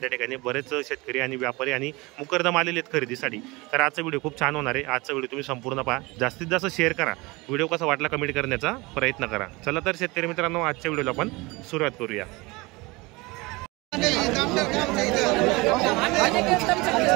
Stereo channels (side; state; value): left; quieter; 23.8 dB